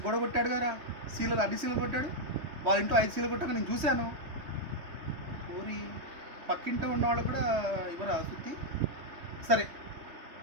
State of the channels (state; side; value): late; left; 3.3 ms